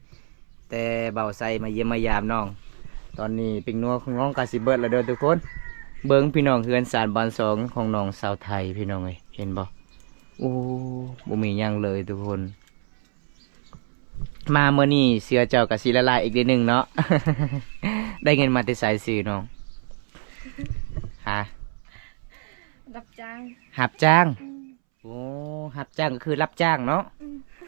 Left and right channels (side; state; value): left; silent; 62 dB below the other